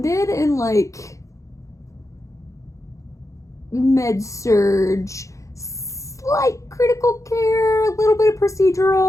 in, med-surg, slight critical care, a little bit of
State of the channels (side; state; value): right; late; 0.15 ms